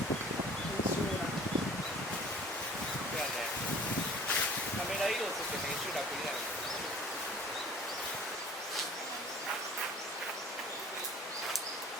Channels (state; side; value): normal; both; correlation 0.49